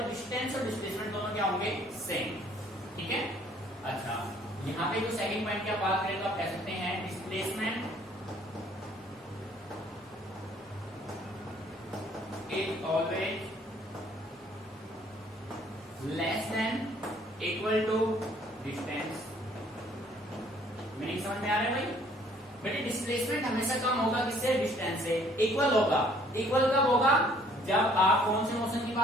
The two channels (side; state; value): both; normal; correlation 0.60